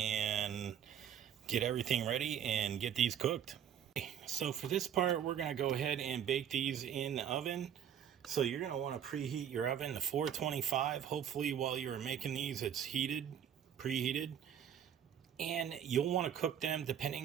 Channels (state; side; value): quieter; left; 9.1 dB